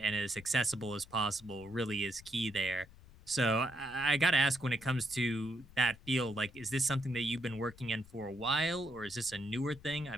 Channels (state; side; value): noise; left; rumble, 21 dB below the sound